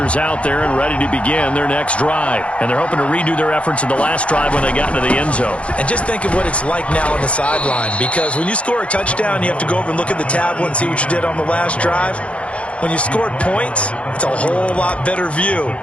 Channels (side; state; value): right; late; 0.062 ms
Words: out there and ready to begin their next drive. And they're hoping to redo their efforts in the last drive when they got into the end zone. And just think of what it's like now on the sideline, because when you score a touchdown, you have to go over and look at the tablet and see what you did on the last drive. When you scored points, it's a whole lot better view